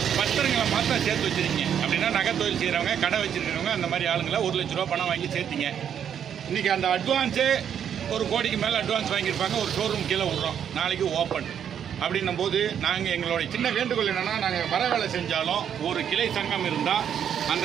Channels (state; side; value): quieter; left; 8.7 dB